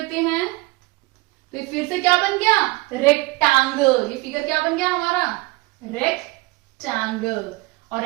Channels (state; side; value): quieter; left; 23.1 dB